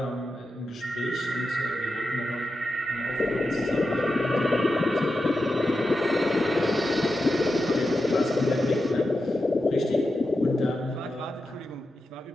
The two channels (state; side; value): normal; both; correlation 0.90